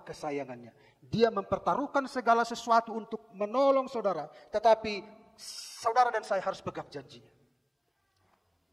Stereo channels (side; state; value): both; identical; correlation 1.00